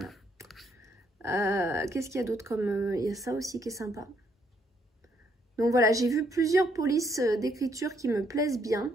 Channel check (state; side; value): normal; both; correlation 0.71